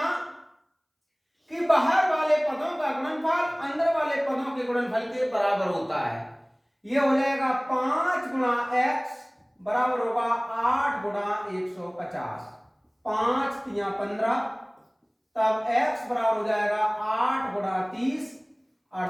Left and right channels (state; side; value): identical; both; correlation 1.00